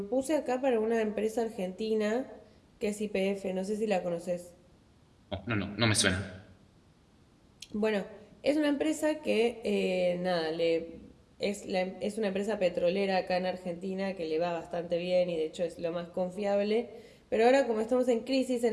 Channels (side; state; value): both; identical; correlation 1.00